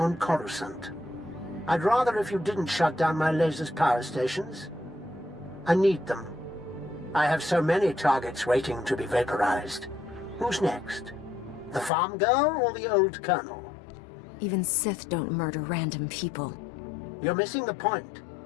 Coruscant. I'd rather if you didn't shut down my laser's power stations. I need them. I have so many targets waiting to be vaporized. Who's next? The farm girl or the old colonel? Even Sith don't murder random people. You're missing the point.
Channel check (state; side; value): drops out; right; at 11.9 s